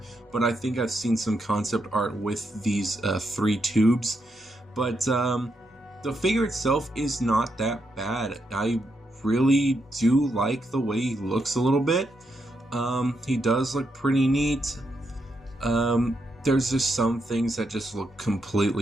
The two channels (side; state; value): both; normal; correlation 0.81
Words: but I think I've seen some concept art with these 3 tubes. But the figure itself is not that bad. I really do like the way he looks a little bit. He does look pretty neat. There's just some things that just look